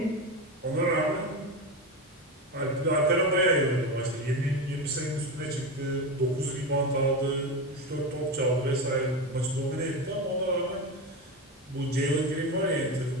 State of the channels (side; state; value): both; normal; correlation 0.19